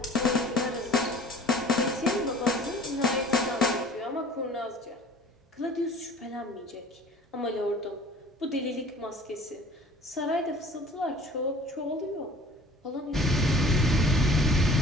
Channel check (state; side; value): normal; both; correlation 0.48